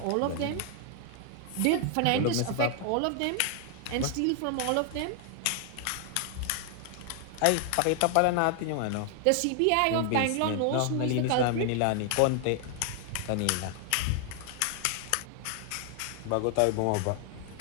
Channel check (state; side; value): different; both; correlation 0.00